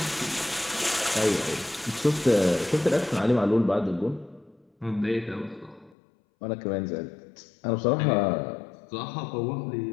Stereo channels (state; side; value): drops out; right; at 6.0 s